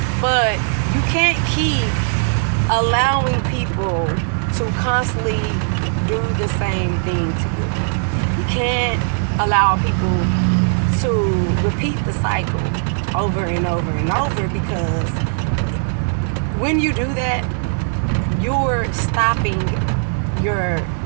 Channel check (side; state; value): left; silent; 67 dB below the other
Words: But you can't keep allowing people to constantly do the same thing to you. You can't allow people to repeat the cycle over and over and over, because when you do that, you're stopping